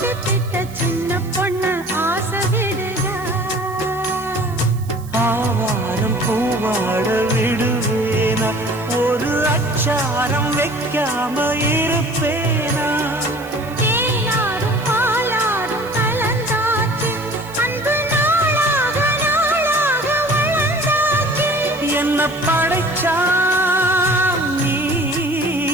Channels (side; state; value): right; noise; hiss, 21 dB below the sound